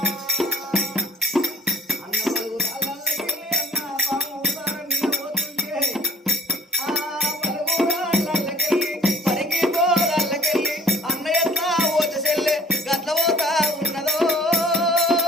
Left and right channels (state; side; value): normal; both; correlation 0.54